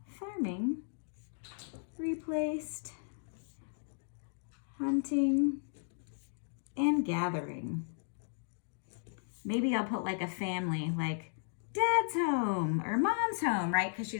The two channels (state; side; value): silent; right; digital silence